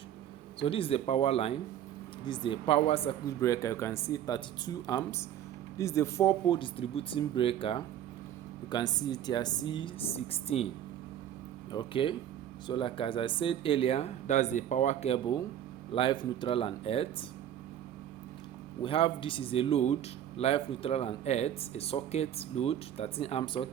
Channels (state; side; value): quieter; left; 10.6 dB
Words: So this is the power line. This is the power circuit breaker. You can see 32 amps. This is the 4-pole distributing breaker. You can see it here, C16. Okay, so like as I said earlier, that's the power cable, live, neutral and earth. We have, this is a load, live, neutral and earth, a socket load, 13 amp